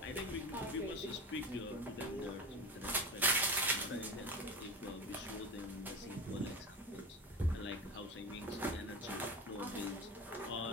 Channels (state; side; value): normal; both; correlation 0.28